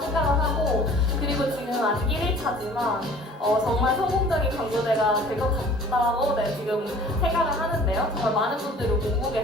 하고, 그리고 지금 아직 1일차지만 정말 성공적인 광고대가 될 것 같다고 지금 생각을 하는데요. 정말 많은 분들이 오고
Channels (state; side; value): normal; both; correlation 0.49